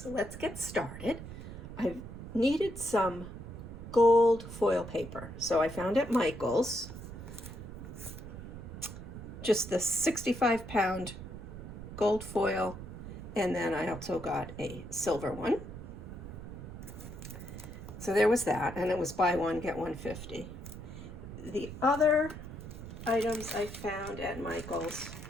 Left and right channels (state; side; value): noise; right; rumble, 11 dB below the sound